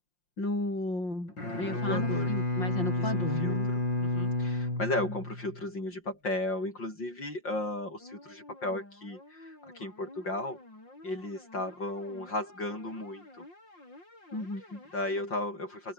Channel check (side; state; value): right; late; 5.6 ms